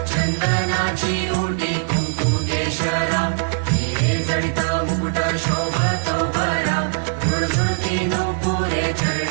चंदनाची ओटी कुंकुम केशरा हिरे जडित मुकुट शोभतो भरा झुळझुळती नूपुरे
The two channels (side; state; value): left; silent; 65 dB below the other